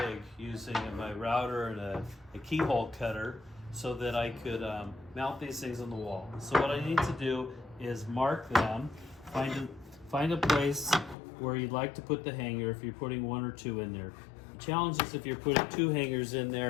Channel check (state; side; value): drops out; right; at 11.2 s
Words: using my router and a keyhole cutter so that I could mount these things on the wall. So what I need to do is mark them, find a place where you'd like to put the hanger if you're putting one or two in there. The challenge is if you're putting two hangers in